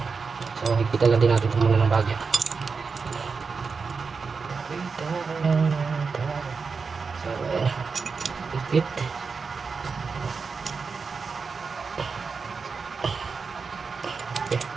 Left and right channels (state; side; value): quieter; left; 5.0 dB